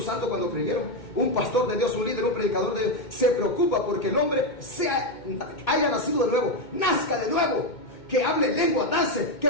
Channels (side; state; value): right; late; 2.2 ms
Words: cuando creyeron? Un pastor de Dios, un líder, un predicador de Dios, se preocupa porque el hombre haya nacido de nuevo, nazca de nuevo, que hable lengua, dance, que